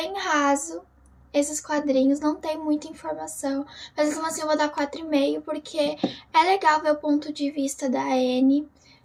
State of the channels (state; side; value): identical; both; correlation 1.00